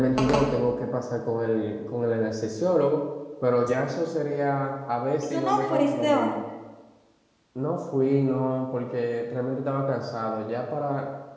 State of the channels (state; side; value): identical; both; correlation 1.00